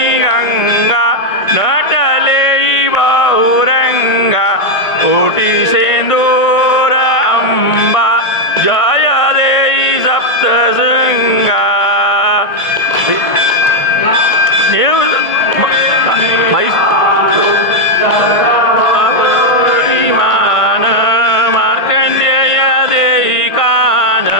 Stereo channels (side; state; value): right; late; 1.5 ms